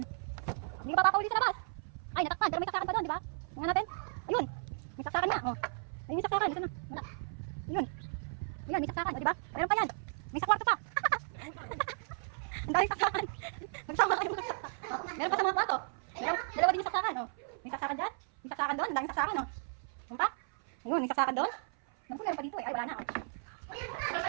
Hindi ka papauli sa labas. Ay, natakpan. Pero may saksakan pa doon, di ba? Tingnan natin. Ayun. May saksakan nga. Oh. Ayun yung saksakan. Ito na. Wala. Ayun. Ayan, may saksakan. O, di ba? Meron pa yan. May sa kwarto pa. Ang daming saksakan. Nagsama kayo mga saksakan. Oh, meron pa sa mga kwarto. Dalawa din yung saksakan. Oh. May saksakan dyan. May saksakan doon. Ang daming saksakan. Oh. Ano pa? Ayun, may saksakan doon. Naku, meron pa dito. Ay, wala na. Oh.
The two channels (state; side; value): silent; left; 55 dB below the other